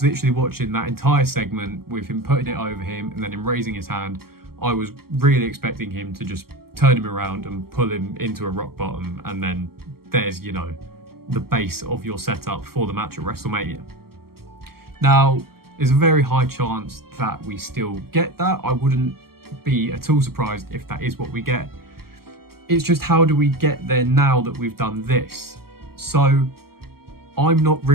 literally watching that entire segment with him putting it over him and then him raising his hand. I was really expecting him to just turn him around and pull him into a rock bottom, and then there's, the base of your setup for the match at WrestleMania. Now, there's a very high chance that we still get that. I wouldn't be at all surprised if that is what we get. It's just, how do we get there now that we've done this? So I'm not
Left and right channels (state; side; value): late; left; 0.95 ms